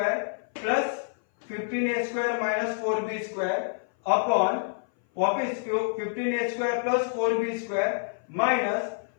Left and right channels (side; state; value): right; silent; 57 dB below the other